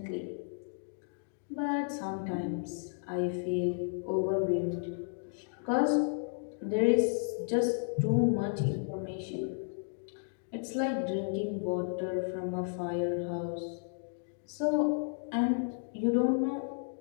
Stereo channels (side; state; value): right; silent; digital silence